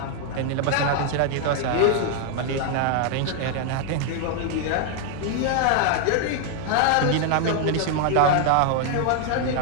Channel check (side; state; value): both; different; correlation 0.00